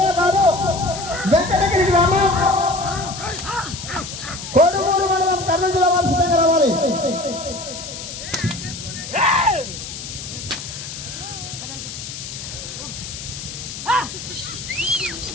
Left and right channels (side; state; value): left; noise; hiss, 9 dB below the sound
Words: గారు, వెంకటగిరి గ్రామం కోడుమూరు మండలం కర్నూలు జిల్లా వారు సిద్ధంగా రావాలి.